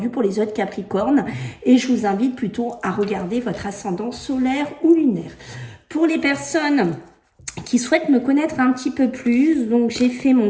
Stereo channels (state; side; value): identical; both; correlation 1.00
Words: pour les autres Capricornes. Et je vous invite plutôt à regarder votre ascendant solaire ou lunaire. Pour les personnes qui souhaitent me connaître un petit peu plus, donc j'ai fait mon